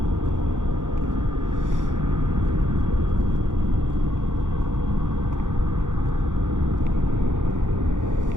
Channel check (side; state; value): left; late; 0.87 ms